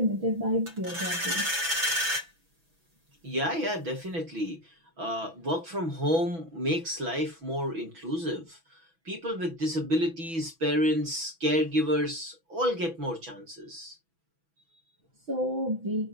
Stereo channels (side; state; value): left; late; 6.1 ms